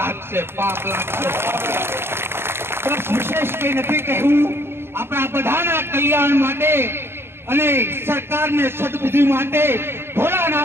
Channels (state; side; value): late; left; 0.11 ms